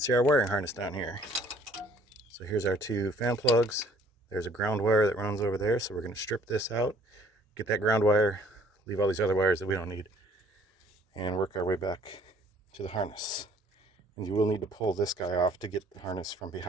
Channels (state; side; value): normal; both; correlation 0.58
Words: our wiring harness down here. So here's our two fan plugs. There's a ground wire that runs over there, so we're going to strip this out, get that ground wire, leave all these other wires that we don't need, and work our way back to the harness. And you will need to pull this guy off to get the harness from